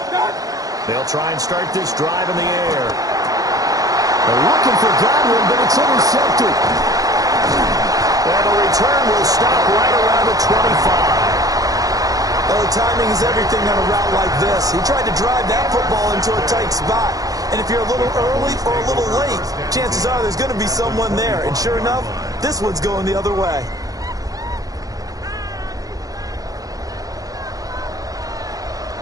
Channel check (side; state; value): left; late; 0.17 ms